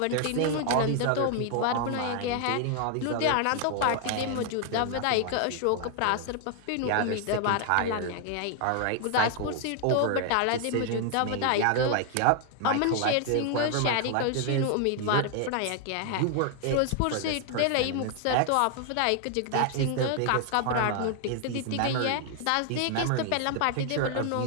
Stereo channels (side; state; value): both; different; correlation 0.00